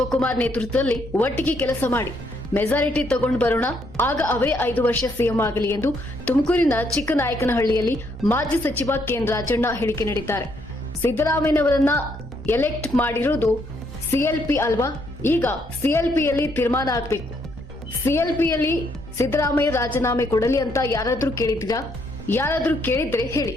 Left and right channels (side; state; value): both; normal; correlation 0.72